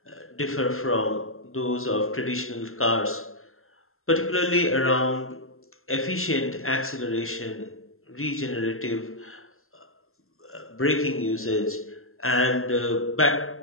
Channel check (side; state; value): right; late; 0.62 ms